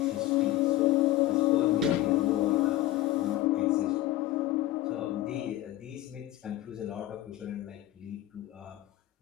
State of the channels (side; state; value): right; quieter; 14.8 dB